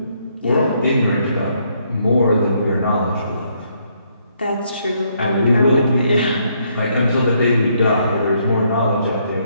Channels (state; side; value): inverted; both; correlation -0.72